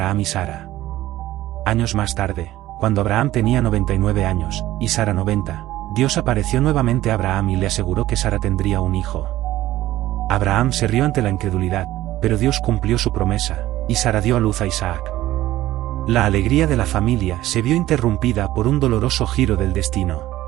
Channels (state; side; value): quieter; left; 15.2 dB